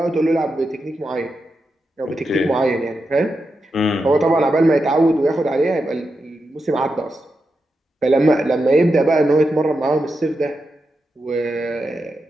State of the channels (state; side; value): normal; both; correlation 0.87